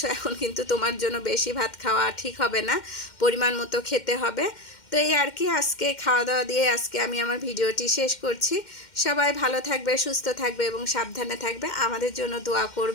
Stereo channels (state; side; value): late; right; 2.1 ms